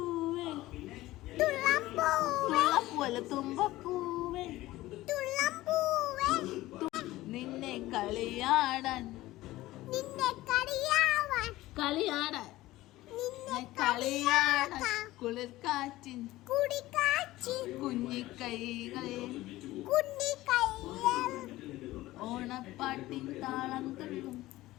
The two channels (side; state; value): right; quieter; 17.2 dB